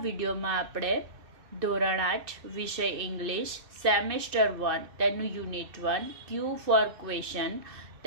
વિડીયોમાં આપણે ધોરણ 8 વિષય ઇંગ્લિશ સેમેસ્ટર 1 તેનું યુનિટ 1 ક્યુ ફોર ક્વેશ્ચન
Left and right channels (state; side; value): late; left; 2.6 ms